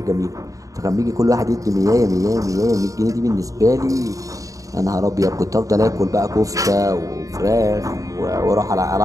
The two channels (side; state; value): left; late; 0.16 ms